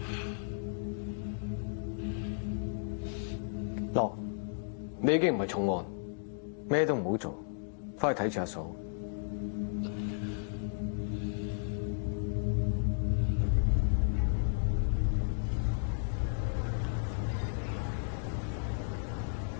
樂，你已經唔係重案，咩都唔好做，翻去睇住阿嫂。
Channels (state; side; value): silent; right; digital silence